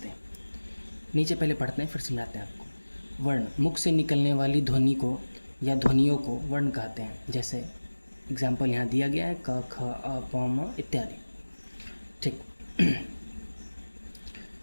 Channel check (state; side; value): inverted; both; correlation -1.00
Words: हैं। नीचे पहले पढ़ते हैं फिर समझाते हैं आपको। वर्ण, मुख से निकलने वाली ध्वनि को या ध्वनियों को वर्ण कहते हैं। जैसे एग्जाम्पल यहाँ दिया गया है, क ख अ प म इत्यादि। ठीक।